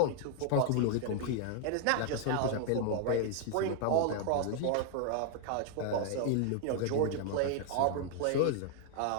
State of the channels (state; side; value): different; both; correlation 0.00